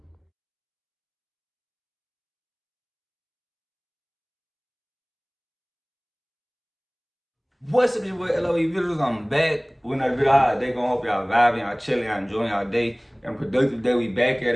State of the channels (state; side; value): identical; both; correlation 1.00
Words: What's up, your boy LOE Visuals? I'm back with another video. How they gonna hope y'all vibing, y'all chilling, y'all enjoying y'all day. And productive day. We back at